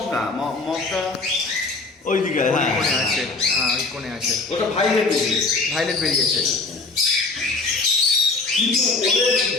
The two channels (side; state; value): right; quieter; 3.7 dB